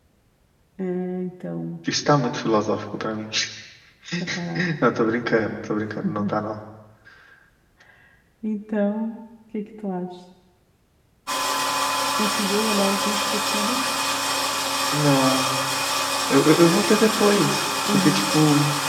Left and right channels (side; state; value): both; identical; correlation 1.00